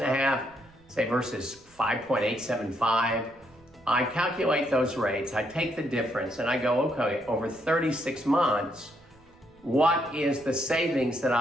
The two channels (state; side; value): noise; right; rumble, 30 dB below the sound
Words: say, versus 5.875, I calculate those rates, I take the difference and I go, okay, over 36 months, what is the savings that